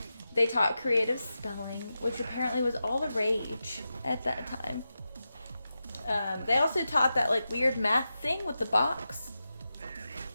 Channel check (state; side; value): inverted; both; correlation -0.91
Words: they taught creative spelling, which apparently was all the rage at that time. They also taught that, like, weird math thing with the box.